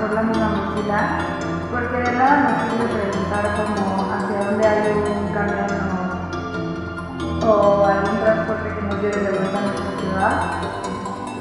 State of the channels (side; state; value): both; identical; correlation 1.00